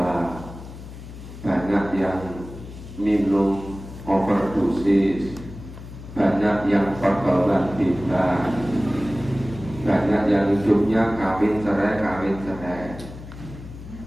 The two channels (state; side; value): noise; left; hum, 13 dB below the sound